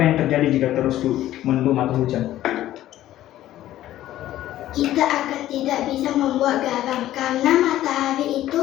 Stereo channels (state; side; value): quieter; right; 13.7 dB